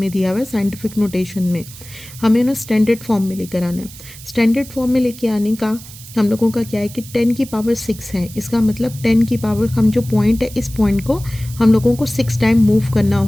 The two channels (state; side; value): noise; right; hiss, 17 dB below the sound